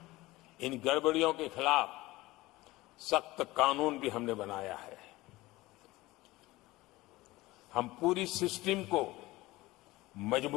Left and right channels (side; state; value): right; quieter; 19.3 dB